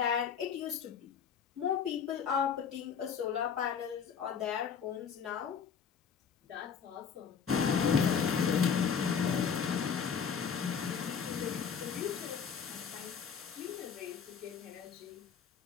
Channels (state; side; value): quieter; right; 7.0 dB